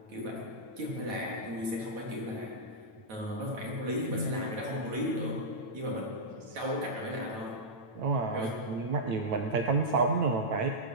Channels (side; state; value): left; late; 9.1 ms